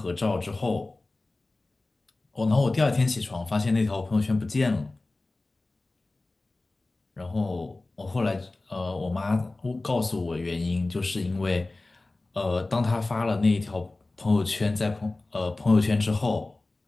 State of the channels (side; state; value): right; quieter; 3.1 dB